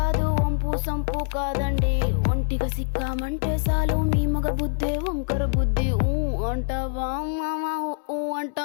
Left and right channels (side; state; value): right; silent; 62 dB below the other